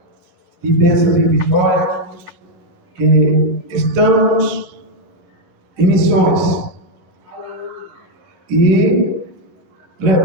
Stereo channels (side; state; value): left; late; 12 ms